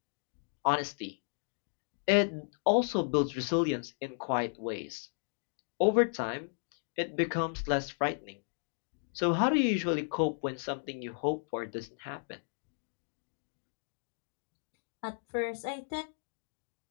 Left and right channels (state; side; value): silent; right; digital silence